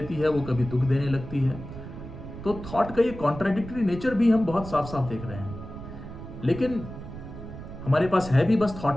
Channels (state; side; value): noise; right; rumble, 11 dB below the sound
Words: है वो कभी दुख देने लगती है। तो थॉट का ये कॉन्ट्राडिक्टरी नेचर भी हम बहुत साफ साफ देख रहे हैं। लेकिन हमारे पास है भी बस